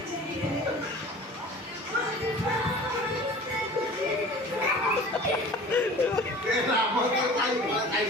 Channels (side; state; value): both; normal; correlation 0.42